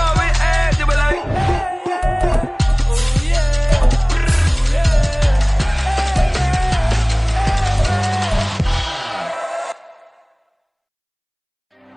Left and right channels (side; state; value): both; identical; correlation 1.00